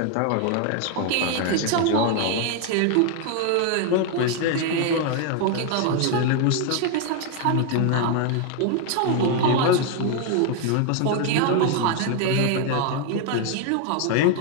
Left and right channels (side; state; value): both; different; correlation 0.01